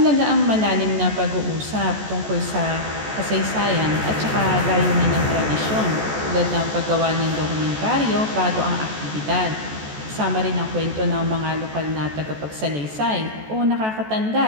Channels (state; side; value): late; left; 14 ms